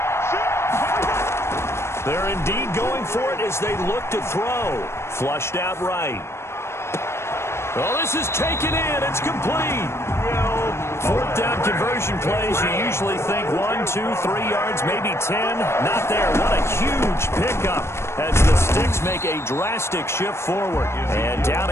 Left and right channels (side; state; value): right; late; 0.13 ms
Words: They're indeed going for it as they look to throw. Flushed out right. Oh, this is taken in. It's complete. 4th down conversion plays, you usually think 1, 2, 3 yards, maybe 10. Not there. What a huge pickup as the Sticks make a drastic shift forward. And down